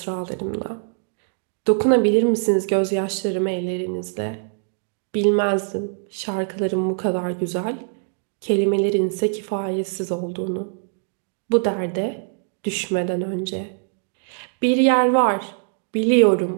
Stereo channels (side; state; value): left; silent; 58 dB below the other